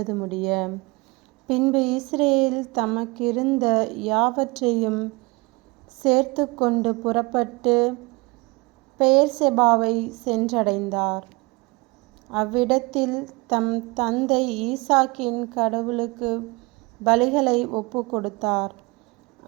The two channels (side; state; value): left; quieter; 25.3 dB